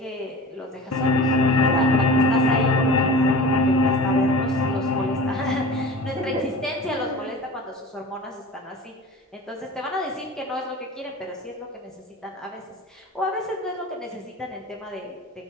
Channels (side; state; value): both; normal; correlation 0.36